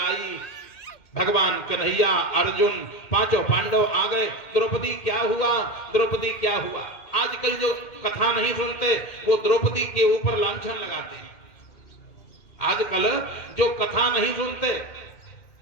भगवान कन्हैया, अर्जुन, पांचों पांडव आ गए। द्रौपदी क्या हुआ, द्रौपदी क्या हुआ? आजकल जो कथा नहीं सुनते वो द्रौपदी के ऊपर लांछन लगाते हैं। आजकल जो कथा नहीं सुनते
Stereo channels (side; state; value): right; late; 2.3 ms